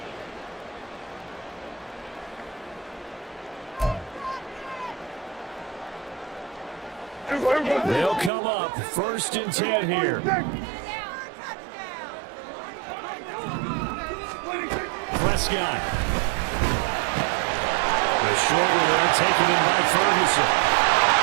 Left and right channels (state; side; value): drops out; left; at 8.3 s